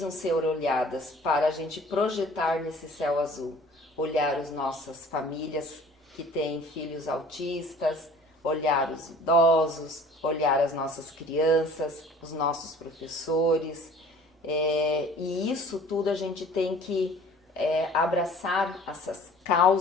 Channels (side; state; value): both; normal; correlation 0.48